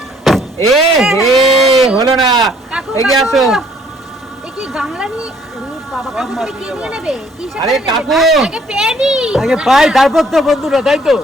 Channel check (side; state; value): both; normal; correlation 0.61